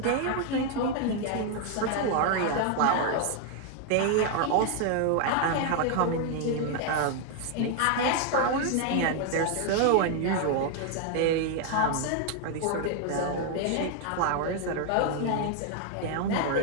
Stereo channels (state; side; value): different; both; correlation 0.00